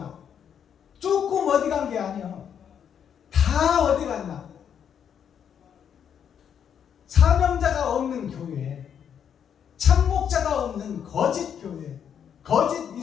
조금 어디 간 게 아니야. 다 어디 갔나? 사명자가 없는 교회, 참목자가 없는 거짓 교회, 거짓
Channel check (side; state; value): right; quieter; 8.3 dB